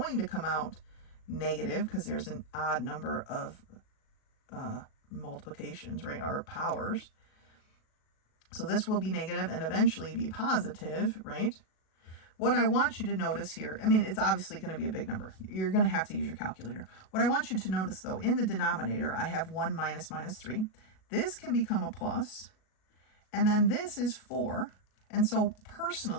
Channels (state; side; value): late; right; 37 ms